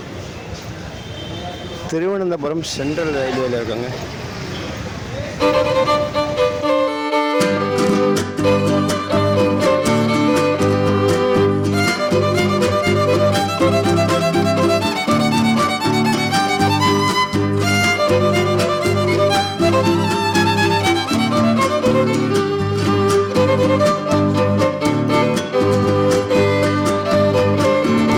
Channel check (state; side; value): identical; both; correlation 1.00